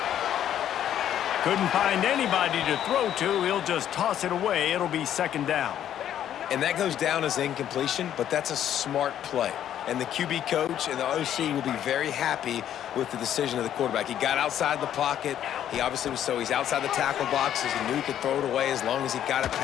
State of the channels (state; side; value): quieter; right; 10.6 dB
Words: Couldn't find anybody to throw to. He'll just toss it away. It'll be 2nd down. And that goes down as incompletion, but that's a smart play. And the QB coach and the OC will be very happy with the decision of the quarterback. He got outside the pocket. He obviously was he's outside the tackle boxes. He knew he could throw it away as long as he got it